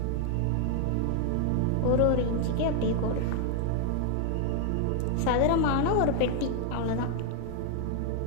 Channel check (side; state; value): both; different; correlation 0.00